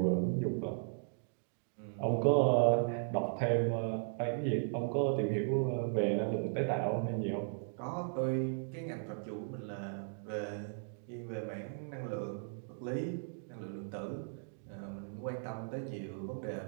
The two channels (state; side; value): silent; left; digital silence